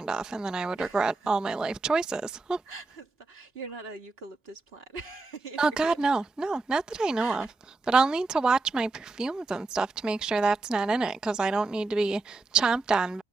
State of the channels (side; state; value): left; quieter; 3.6 dB